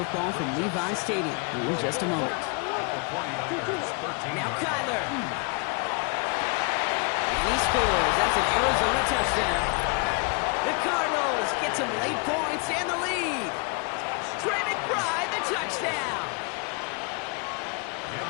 from Levi Stadium in just a moment. Now Kyler. And he scores. That's an Arizona touchdown. The Cardinals get some late points and the lead. Trey McBride, the touchdown.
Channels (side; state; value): right; quieter; 33.3 dB